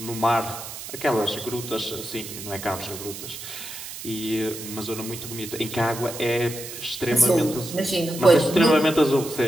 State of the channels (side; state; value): right; noise; hiss, 10 dB below the sound